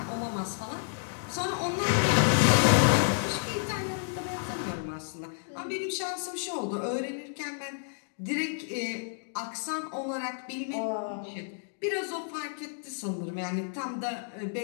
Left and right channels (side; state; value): right; silent; digital silence